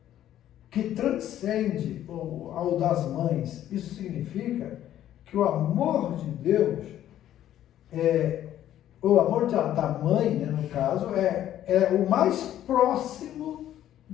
que transcende ao das mães. Isso significa que o amor de Deus, o amor da mãe, né, no caso, é o mais próximo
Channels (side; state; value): right; quieter; 11.9 dB